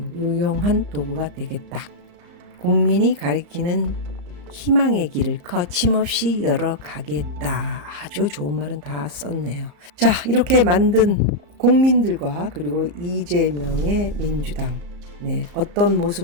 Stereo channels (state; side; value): late; left; 34 ms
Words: 유용한 도구가 되겠다. 국민이 가리키는 희망의 길을 거침없이 열어가겠다. 아주 좋은 말은 다 썼네요. 자, 이렇게 만든 국민들과 그리고 이재명의 민주당, 네, 어떤